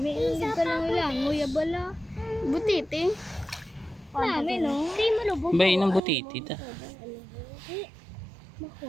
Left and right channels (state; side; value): drops out; left; at 6.0 s